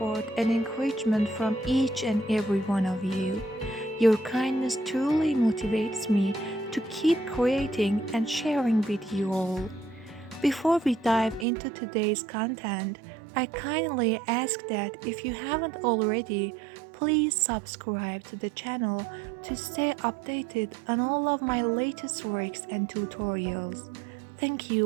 and encouragement from each and every one of you. Your kindness truly motivates me to keep creating and sharing with you all. Before we dive into today's content, I kindly ask that if you haven't already, please subscribe to the channel to stay updated on all of my latest works and tutorials. Thank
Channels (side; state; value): left; drops out; at 11.5 s